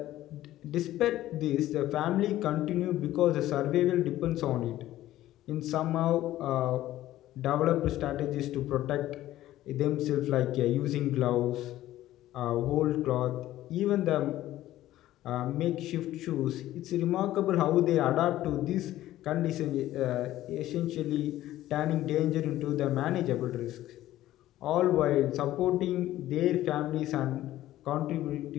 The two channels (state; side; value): quieter; right; 14.4 dB